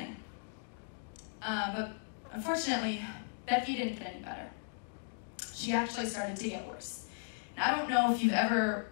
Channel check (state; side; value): silent; right; digital silence